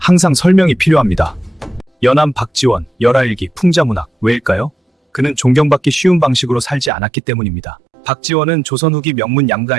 설명이 필요합니다. 연암 박지원, 열하일기, 풍자문학. 왜일까요? 그는 존경받기 쉬운 방식으로 살지 않았기 때문입니다. 박지원은 조선 후기 명문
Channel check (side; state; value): left; drops out; at 6.9 s